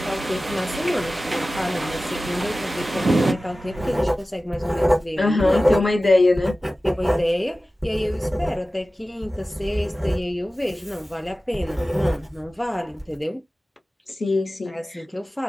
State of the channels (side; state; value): both; normal; correlation 0.96